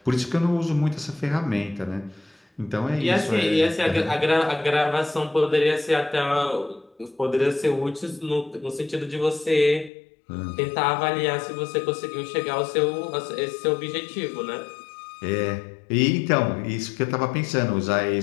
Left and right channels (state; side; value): drops out; right; at 9.9 s